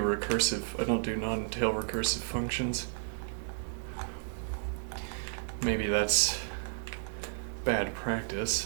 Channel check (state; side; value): silent; left; digital silence